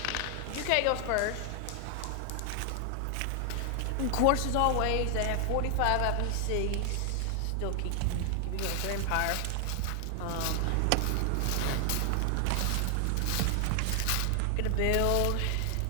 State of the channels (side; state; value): both; different; correlation 0.00